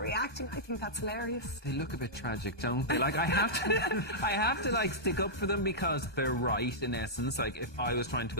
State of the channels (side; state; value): right; late; 1.2 ms